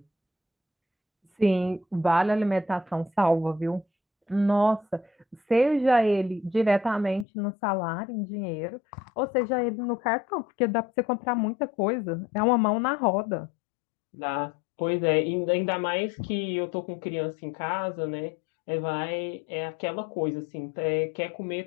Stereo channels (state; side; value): drops out; right; at 7.2 s